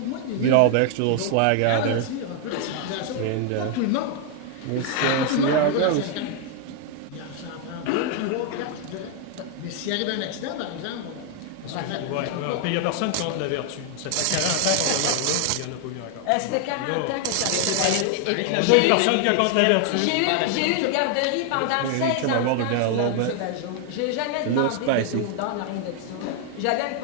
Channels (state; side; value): different; both; correlation 0.01